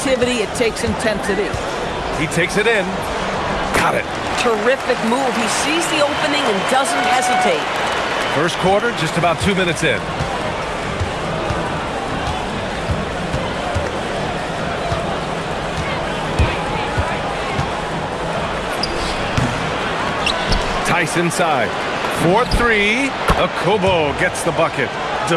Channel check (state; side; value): identical; both; correlation 1.00